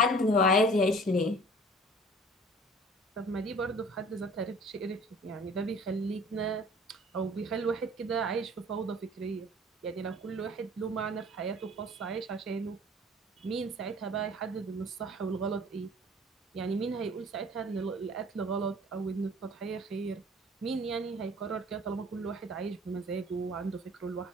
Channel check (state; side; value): normal; both; correlation 0.48